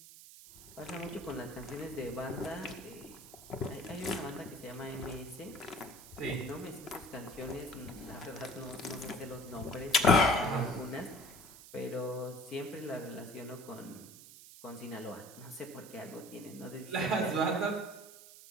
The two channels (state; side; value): noise; right; hiss, 17 dB below the sound